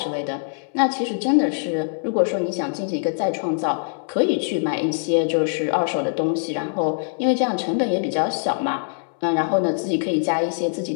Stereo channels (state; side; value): silent; right; 64 dB below the other